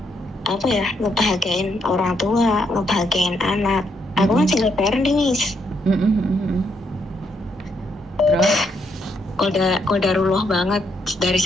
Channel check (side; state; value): both; normal; correlation 0.76